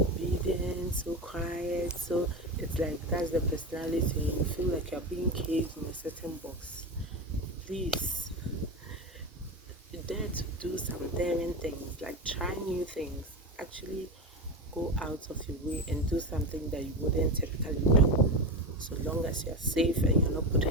so quiet, so it's like that's the personality. You feel like you're being caged in a certain box. Please dare to do some some daring things, like try new things. Actually go out of your way and do something that you wouldn't typically do, so long as you're safe and you're not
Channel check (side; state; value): both; normal; correlation 0.21